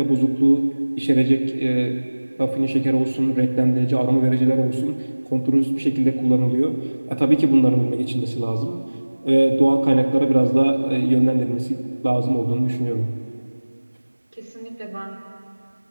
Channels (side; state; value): both; inverted; correlation -1.00